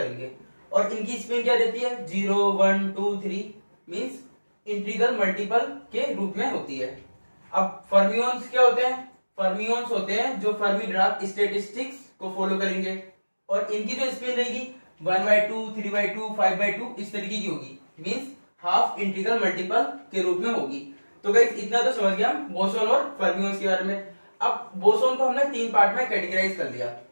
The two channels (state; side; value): inverted; both; correlation -1.00